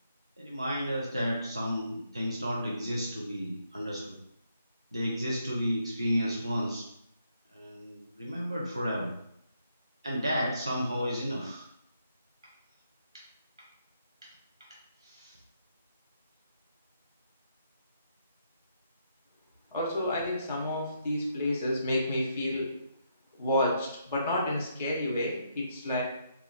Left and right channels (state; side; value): inverted; both; correlation -0.76